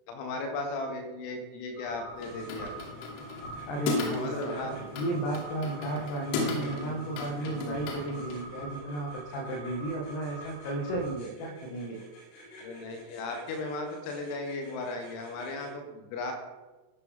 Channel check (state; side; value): late; right; 35 ms